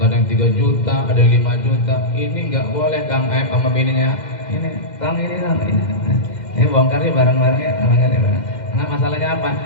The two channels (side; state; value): right; late; 2.1 ms